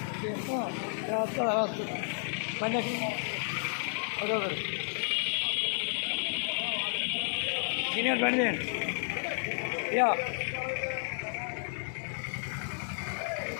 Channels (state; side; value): silent; right; digital silence